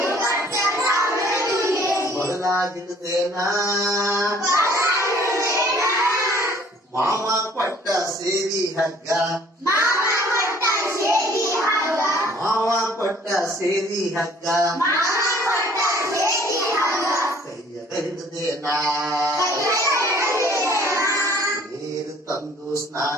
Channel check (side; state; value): both; normal; correlation 0.56